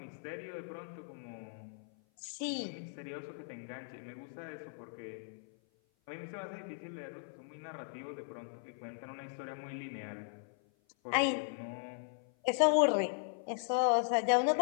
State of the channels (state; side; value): silent; right; 52 dB below the other